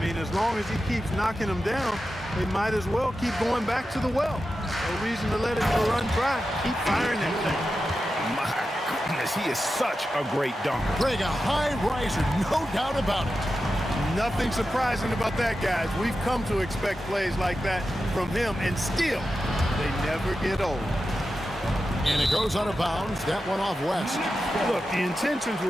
mean, as long as he keeps knocking them down, they might as well keep going back to the well. No reason to let it run dry. Keep firing that thing. My goodness, he is such a great dunker. Greg, a high riser, no doubt about it. Nothing surprising about that, guys. We've come to expect plays like that from him, and still, they never get old. And it goes out of bounds. That one off West. Look, the intentions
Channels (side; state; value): both; normal; correlation 0.91